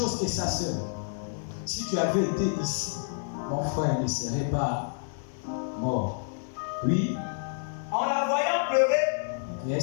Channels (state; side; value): silent; right; 58 dB below the other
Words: que sa sœur. Si tu avais été ici, mon frère ne serait pas mort. Oui. En la voyant pleurer,